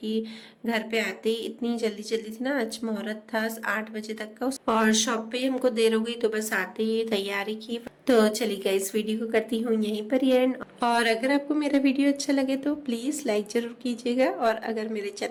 घर पे आते ही इतनी जल्दी थी ना, आज मुहूर्त था 8 बजे तक का, और शॉप पे हमको देर हो गई, तो बस आते ही तैयारी की। तो चलिए गाइस, वीडियो को करती हूँ यहीं पर ही एंड। और अगर आपको मेरा वीडियो अच्छा लगे तो प्लीज़ लाइक ज़रूर कीजिएगा, और अगर मेरे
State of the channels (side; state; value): both; identical; correlation 1.00